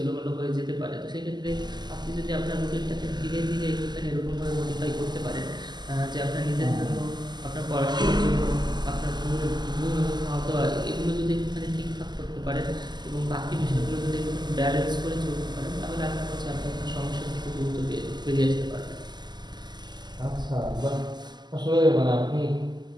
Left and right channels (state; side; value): late; left; 0.21 ms